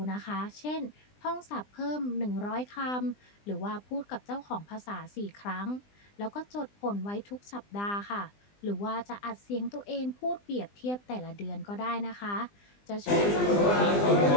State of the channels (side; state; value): right; late; 20 ms